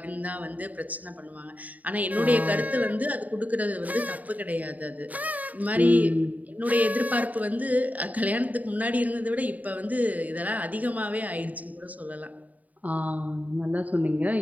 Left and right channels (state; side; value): late; left; 0.075 ms